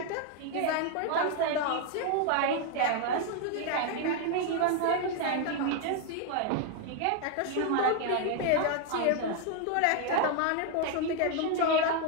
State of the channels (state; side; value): different; both; correlation 0.01